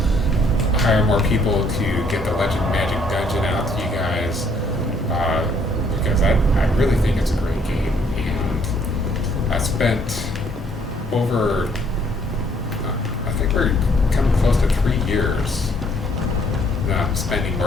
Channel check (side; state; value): both; normal; correlation 0.65